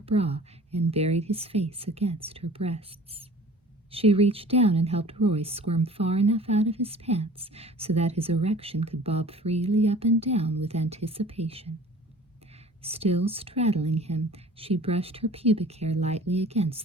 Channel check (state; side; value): normal; both; correlation 0.46